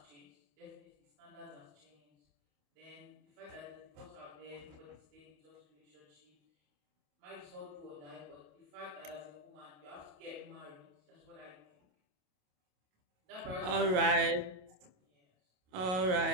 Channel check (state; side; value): late; left; 28 ms